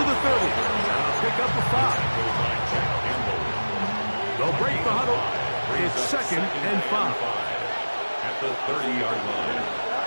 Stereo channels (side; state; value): both; inverted; correlation -1.00